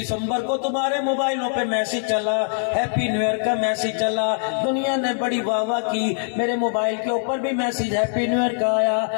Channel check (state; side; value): silent; right; 64 dB below the other